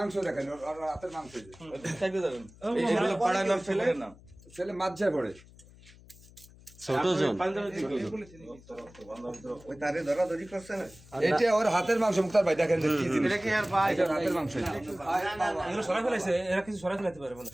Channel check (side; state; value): left; noise; hum, 23 dB below the sound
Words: দেখেন আর হাতের মাংস চাইবে যাবেন এইগুলো পাড়ানোর ছেলে মাঝে পড়ে ছোট জন ওই তারে ধরাধরি করছে না এটা ওর হাতের মাংস মুক্তার ভাই দেখেন কি জিনিস এটা কি আর ভাই এটা হাতের মাংস এগুলো সরাই ফেলাইছে এরা কিছু সরাই ফেলাইতে পারে মনে